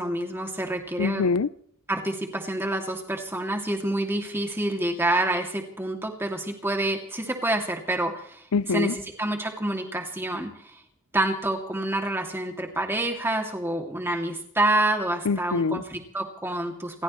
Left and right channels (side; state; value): both; normal; correlation 0.54